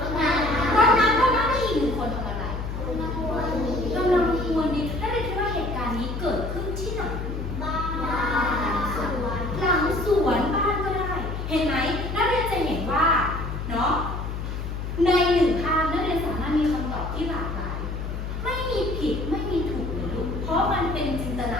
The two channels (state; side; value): noise; left; hum, 5 dB below the sound